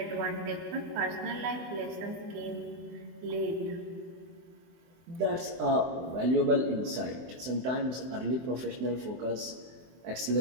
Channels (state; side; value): late; left; 23 ms